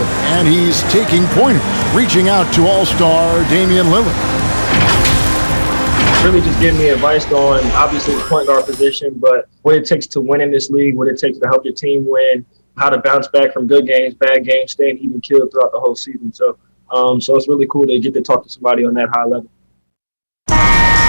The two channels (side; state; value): both; inverted; correlation -1.00